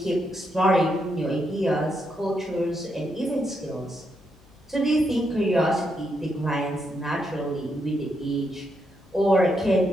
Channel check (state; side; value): noise; left; hum, 29 dB below the sound